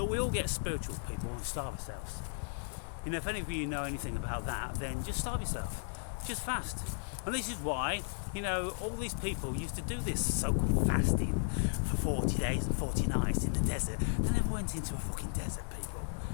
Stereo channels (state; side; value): silent; right; digital silence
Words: we all get spiritual, people, and starve ourselves. If any of you know anything about that, then just starve yourself. Just fast. And this is why, all these people used to do this so-called fasting for 40 days and 40 nights in the desert. They never went into a fucking desert, people.